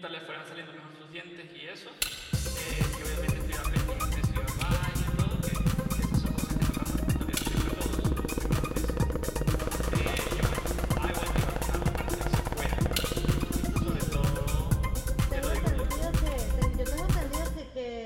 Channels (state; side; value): identical; both; correlation 1.00